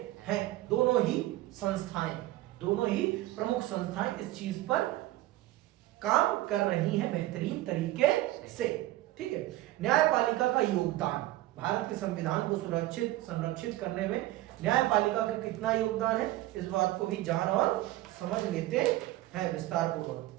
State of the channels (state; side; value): quieter; left; 16.4 dB